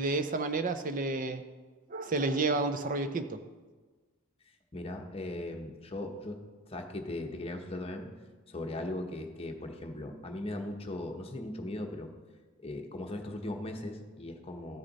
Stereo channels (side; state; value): both; normal; correlation 0.31